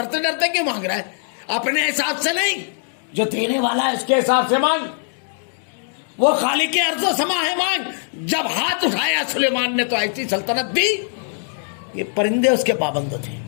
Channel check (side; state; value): right; silent; digital silence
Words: ڈرتے کیوں مانگ رہا ہے؟ اپنے حساب سے نہیں، جو دینے والا ہے اس کے حساب سے مانگ، وہ خالق ارض و سما ہے، مانگ۔ جب ہاتھ اٹھایا سلیمان نے تو ایسی سلطنت دی، یہ پرندے اس کے پابند تھے،